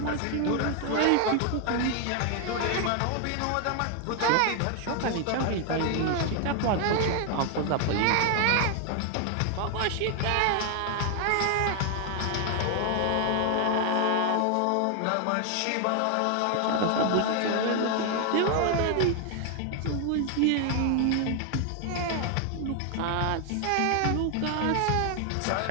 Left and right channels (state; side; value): different; both; correlation 0.00